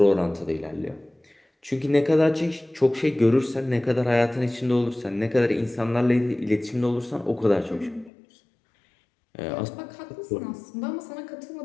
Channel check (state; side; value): drops out; right; at 8.1 s